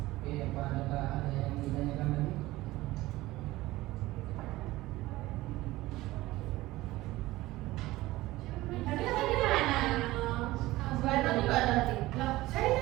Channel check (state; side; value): quieter; left; 18.0 dB